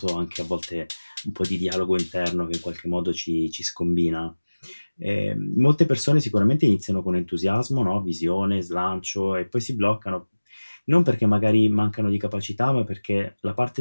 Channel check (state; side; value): inverted; both; correlation -1.00